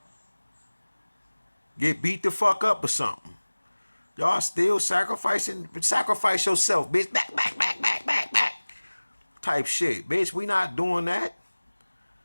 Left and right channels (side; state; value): both; inverted; correlation -1.00